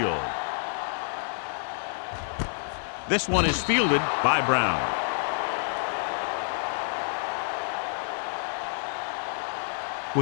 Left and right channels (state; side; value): silent; right; digital silence